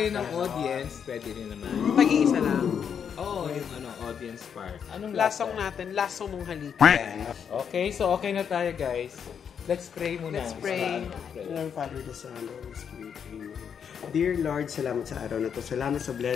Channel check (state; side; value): quieter; right; 7.5 dB